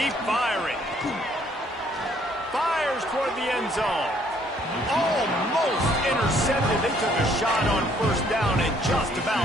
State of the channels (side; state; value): both; normal; correlation 0.64